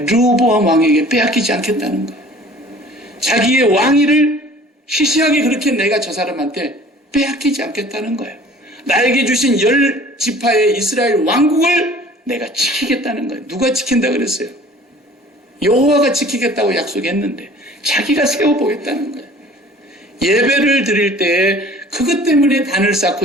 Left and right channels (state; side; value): normal; both; correlation 0.48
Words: 왕에게 빼앗기지 않겠다는 거예요. 자기의 왕위를 시시하게 그렇게 내가 저 사람한테 빼앗기지 않겠다는 거예요. 나에게 주신 10지파의 이스라엘 왕국을 내가 지키겠다는 거예요. 누가 지킨다 그랬어요? 여호와가 지키겠다고 약속했는데 자기가 세워보겠다는 거예요. 예배를 드릴 때 그것 때문에 단을 쌓고